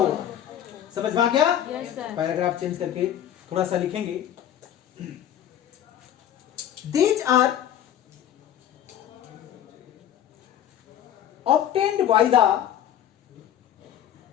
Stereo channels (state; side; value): quieter; right; 10.7 dB